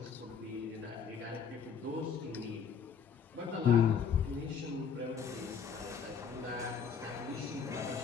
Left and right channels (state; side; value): quieter; right; 6.8 dB